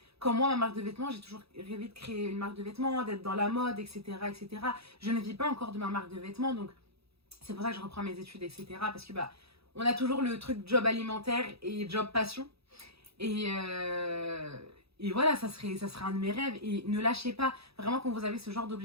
comme moi ma marque de vêtements, j'ai toujours rêvé de créer une marque de vêtements, d'être dans la mode, etc., etc. Je ne vis pas encore de ma marque de vêtements, donc c'est pour ça que je reprends mes études, etc. Parce que on a toujours le truc job alimentaire et job passion. Et, et voilà, ça serait un de mes rêves. Et ne lâchez pas, vraiment quand vous avez ce genre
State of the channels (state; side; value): late; left; 0.77 ms